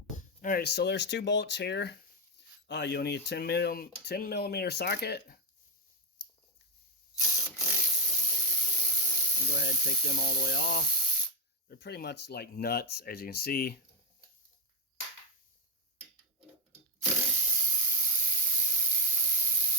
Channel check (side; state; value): both; normal; correlation 0.01